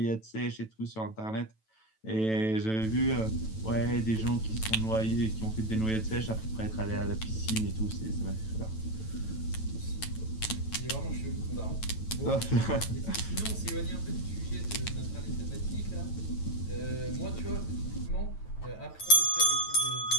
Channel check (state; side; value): late; right; 9.1 ms